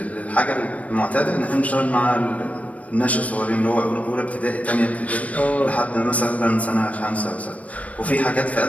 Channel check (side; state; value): right; late; 0.067 ms